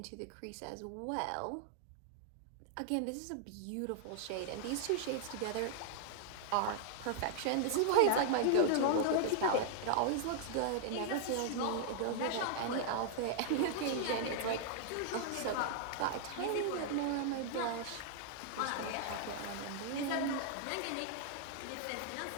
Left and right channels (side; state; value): both; different; correlation -0.01